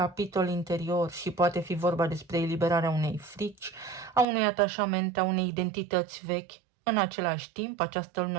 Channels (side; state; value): left; drops out; at 4.2 s